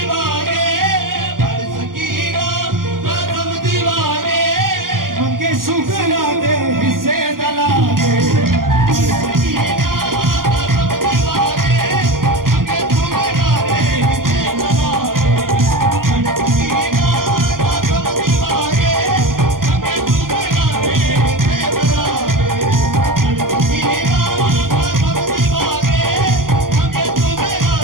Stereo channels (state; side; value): late; left; 0.91 ms